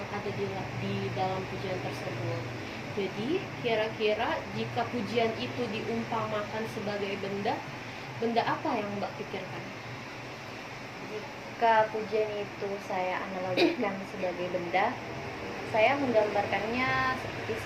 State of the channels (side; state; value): left; noise; rumble, 28 dB below the sound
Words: ada di dalam pujian tersebut. Jadi kira-kira jika pujian itu diumpamakan sebagai benda apa yang Mbak pikirkan? Jika pujian itu saya analogikan sebagai benda, saya menggambarkannya seperti